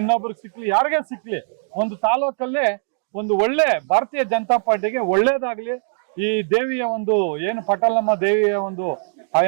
ಸಿಕ್ಲಿ, ಯಾರಿಗೇ ಸಿಕ್ಲಿ, ಒಂದು ತಾಲೂಕಲ್ಲೇ ಒಂದು ಒಳ್ಳೆ ಭಾರತೀಯ ಜನತಾ ಪಾರ್ಟಿಗೆ ಒಳ್ಳೇದಾಗ್ಲಿ. ಈ ದೇವಿಯ ಒಂದು ಏನು ಪಟಾಲಮ್ಮ ದೇವಿಯ ಒಂದು ಆ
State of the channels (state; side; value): silent; left; digital silence